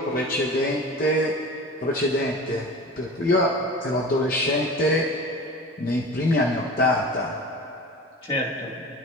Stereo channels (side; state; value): both; normal; correlation 0.36